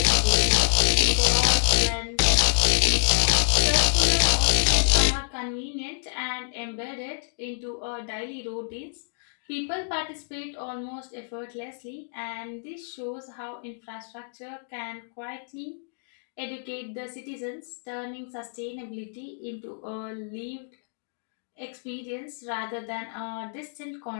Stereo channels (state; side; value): silent; right; digital silence